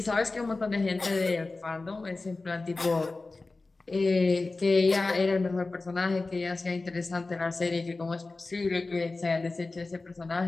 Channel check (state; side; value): quieter; right; 3.5 dB